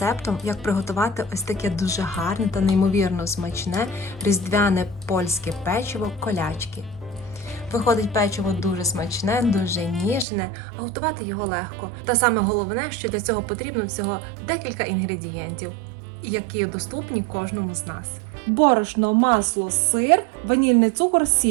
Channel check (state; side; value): drops out; left; at 10.2 s